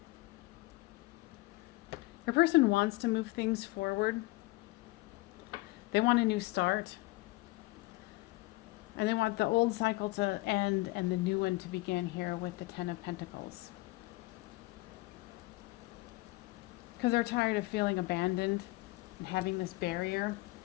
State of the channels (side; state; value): right; quieter; 21.1 dB